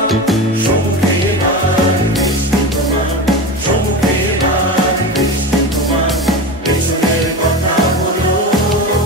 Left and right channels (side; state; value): both; normal; correlation 0.25